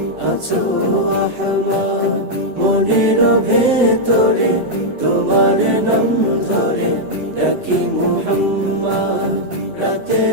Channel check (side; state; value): left; late; 7.9 ms